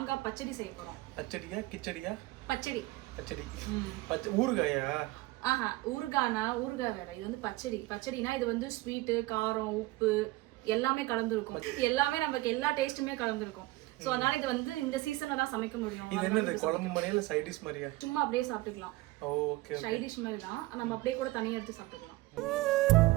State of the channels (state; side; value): quieter; left; 19.7 dB